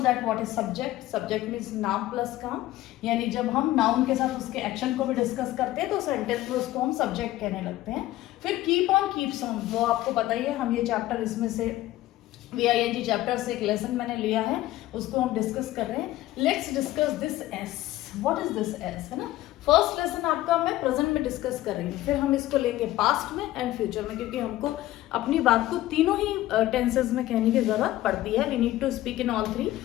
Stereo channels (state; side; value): quieter; right; 15.6 dB